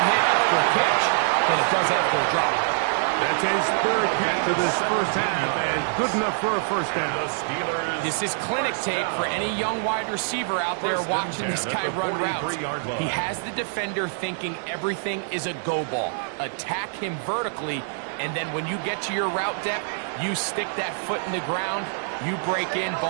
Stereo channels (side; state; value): left; silent; 62 dB below the other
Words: hit after a catch than it does after a drop. That's his third catch of this first half, and good enough for a first down. This is clinic tape for any young wide receiver out there watching this guy run routes. He has the defender thinking everything is a go ball. Attack him vertically, and then when you get to your route depth, you stick that foot in the ground, you break in,